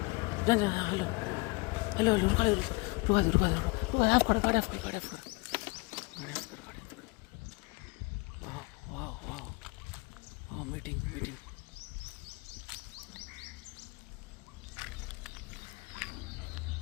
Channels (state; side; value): quieter; right; 27.1 dB